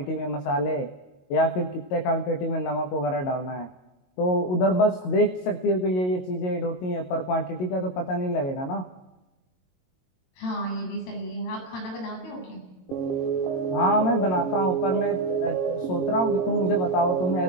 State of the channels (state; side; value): late; right; 22 ms